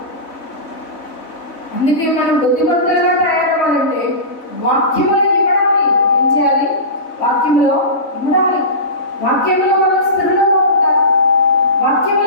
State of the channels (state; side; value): late; right; 3.5 ms